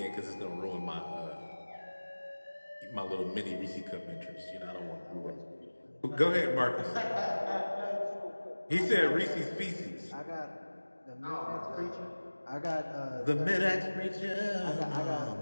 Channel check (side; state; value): both; inverted; correlation -1.00